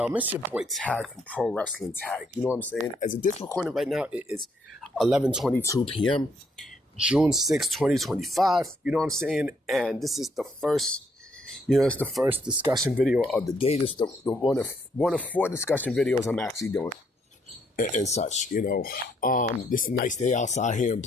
It's your boy Tag from Pro Wrestling Tag. You know what I'm saying? As of this recording right now, it is 11:22 p.m., June 6, 2025. You know what I'm saying? And this is the first, it's the first discussion video of the day. This is the one of four discussion videos I'm actually doing and such. This is a nice day outside here in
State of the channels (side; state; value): both; normal; correlation 0.71